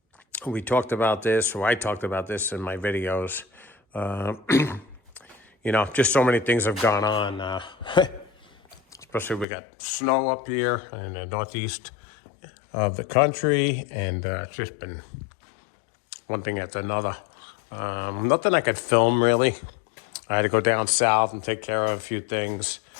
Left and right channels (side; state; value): right; drops out; at 9.5 s